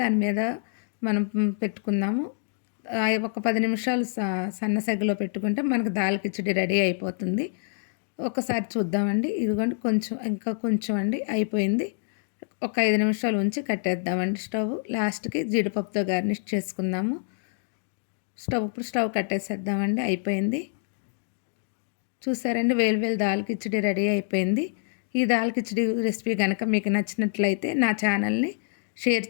మీద మనం పెట్టుకుందాము. ఒక 10 నిమిషాలు సన్న సెగలో పెట్టుకుంటే మనకు దాల్ కిచిడి రెడీ అయిపోతుంది. ఒకసారి చూద్దామండి. ఇదిగోండి కొంచెం ఇంకా కొంచెం అండి అయిపోయింది. ఒక 5 నిమిషాలు ఉంచి కట్టేద్దామండి స్టవ్. లాస్ట్కి జీడిపప్పుతో గార్నిష్ చేసుకుందాము. ఇప్పుడు స్టవ్ కట్టేసేద్దామండి. అయిపోయింది. చూసారండి, వేలు దాల్ కిచిడి రెడీ అయిపోయింది. ఈ దాల్ కిచిడి రెసిపీ కనుక మీకు నచ్చినట్లయితే నా ఛానల్ని షేర్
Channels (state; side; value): silent; right; digital silence